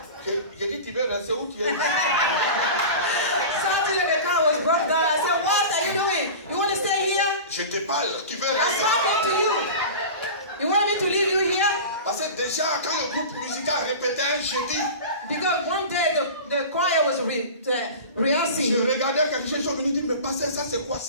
J'ai dit, tu veux rester où tu es? Saturday the car was broke down. I said, what are you doing? You want to stay here? Je te parle, tu veux I'm rester? talking to you. You want me to leave you here? Parce que déjà, quand le groupe musical répétait un jeudi, because one day the choir was rehearsing. Je regardais quelque chose, ils sont venus dire, mais pasteur, ça c'est quoi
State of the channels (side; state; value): both; inverted; correlation -0.32